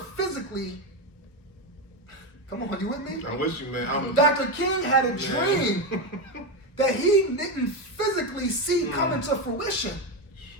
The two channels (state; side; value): late; right; 1.2 ms